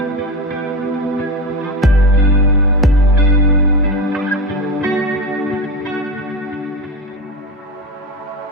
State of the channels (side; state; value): both; normal; correlation 0.22